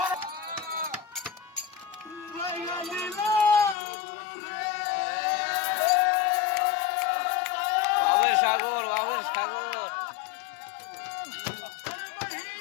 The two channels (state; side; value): drops out; right; at 3.8 s